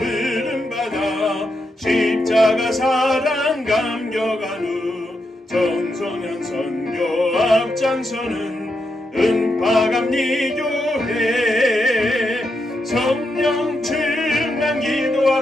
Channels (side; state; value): both; normal; correlation 0.84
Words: 십자가 사랑 감격한 후 청소년 선교 앞장서는 은파감리교회 성령 충만